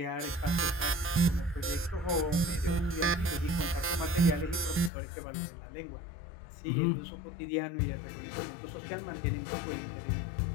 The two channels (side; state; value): right; drops out; at 4.9 s